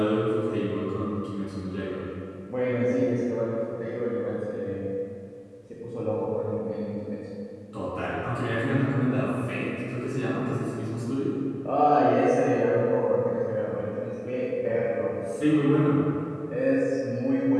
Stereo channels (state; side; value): identical; both; correlation 1.00